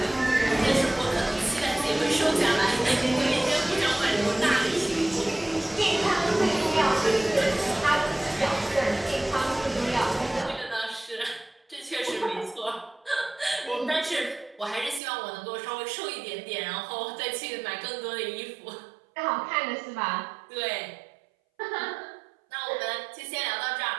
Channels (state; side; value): drops out; left; at 15.0 s